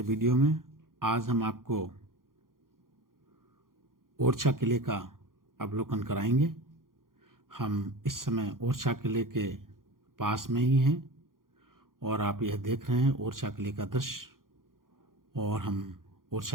वीडियो में। आज हम आपको ओरछा किले का अवलोकन कराएंगे। हम इस समय ओरछा किले के पास में ही हैं और आप यह देख रहे हैं ओरछा किले का दृश्य। और हम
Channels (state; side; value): late; left; 0.91 ms